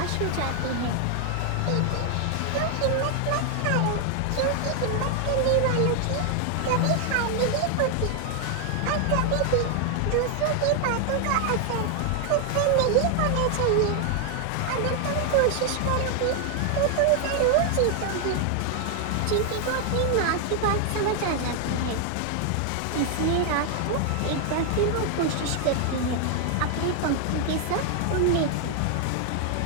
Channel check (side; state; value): both; different; correlation 0.00